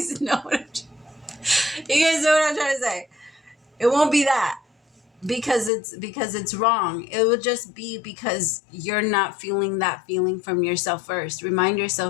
know what I'm trying to say. It won't be that because it's wrong. It will just be because you're not feeling that feeling from yourself first. Remind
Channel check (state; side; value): drops out; right; at 5.7 s